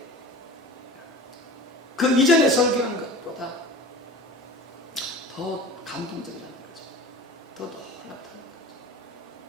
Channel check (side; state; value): both; normal; correlation 0.37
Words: 그 이전에 설교한 것보다 더 감동적이라는 거죠. 더 놀랍다는 거죠.